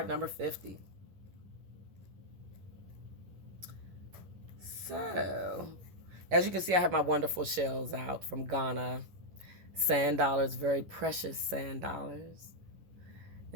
number 50. So, as you can see, I have my wonderful shells out from Ghana. Sand dollars, very precious sand dollars.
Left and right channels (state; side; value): late; left; 11 ms